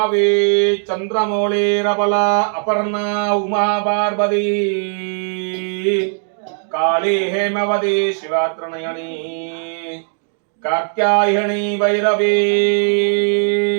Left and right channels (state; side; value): silent; left; digital silence